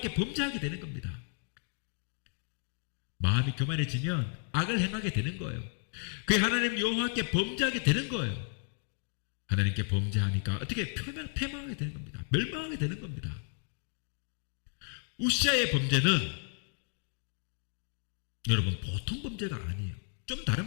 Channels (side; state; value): right; silent; 56 dB below the other